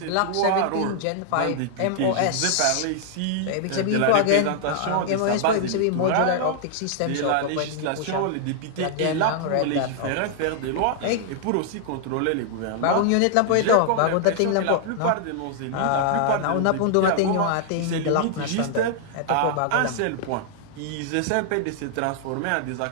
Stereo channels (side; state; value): both; different; correlation -0.01